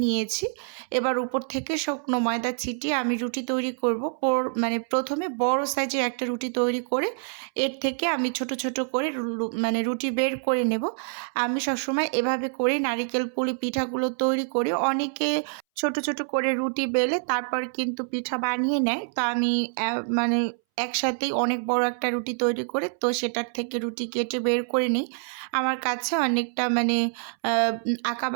নিয়েছি। এবার উপর থেকে শুকনো ময়দা ছিটিয়ে আমি রুটি তৈরি করব। প্রথমে বড় সাইজের একটা রুটি তৈরি করে এর থেকে আমি ছোট ছোট করে রুটি বের করে নেব। আমি সবসময় এভাবে করে নারিকেল পুলি পিঠাগুলো তৈরি করি। অনেকে ছোট ছোট করে রুটি বেলে তারপর কিন্তু পিঠা বানিয়ে নেয়, তো আমি একসাথেই অনেক বড় একটা রুটি তৈরি করে তো সেটার থেকে রুটি কেটে বের করে নিই। আমার কাছে অনেকটা মানে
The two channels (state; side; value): silent; left; 61 dB below the other